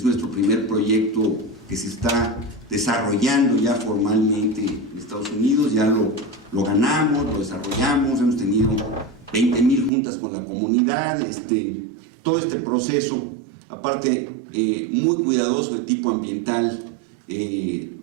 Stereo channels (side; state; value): left; drops out; at 9.9 s